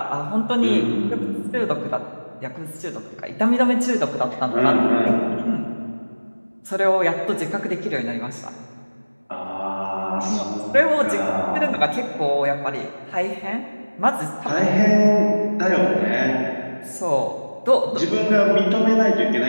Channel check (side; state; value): both; inverted; correlation -1.00